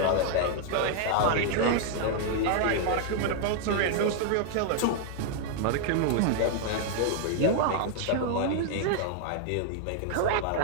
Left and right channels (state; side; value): different; both; correlation 0.00